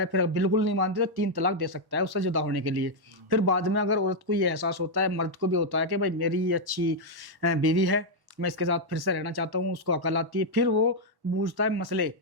फिर बिल्कुल नहीं मानती तो 3 तलाक दे सकता है उससे जुदा होने के लिए। फिर बाद में अगर औरत को ये एहसास होता है, मर्द को भी होता है कि भाई मेरी ये अच्छी बीवी है, मैं इसके साथ फिर से रहना चाहता हूँ, उसको अकल आती है, फिर वो पूछता है मसले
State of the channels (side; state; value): left; late; 1.1 ms